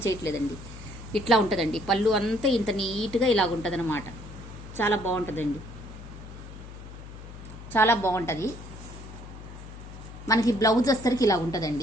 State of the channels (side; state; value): left; noise; hum, 14 dB below the sound